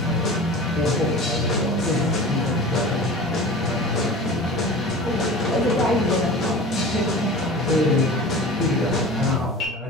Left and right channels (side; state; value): both; normal; correlation 0.37